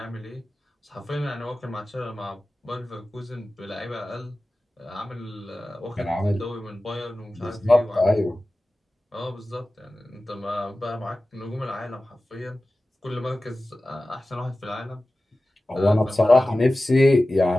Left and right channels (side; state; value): both; normal; correlation 0.96